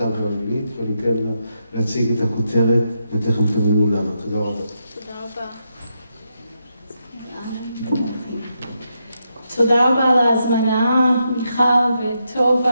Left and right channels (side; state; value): both; inverted; correlation -0.83